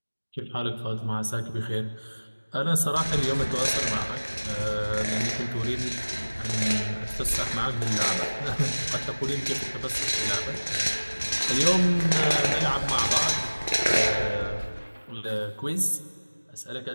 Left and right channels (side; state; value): both; inverted; correlation -1.00